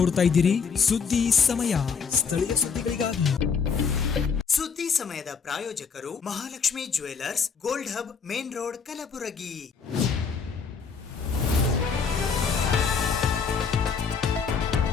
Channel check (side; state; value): right; quieter; 5.8 dB